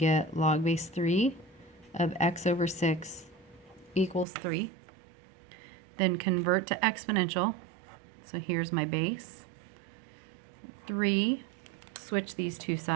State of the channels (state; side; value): drops out; left; at 4.2 s